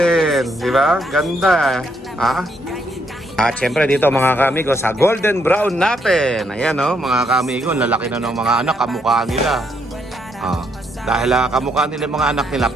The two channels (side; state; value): both; normal; correlation 0.74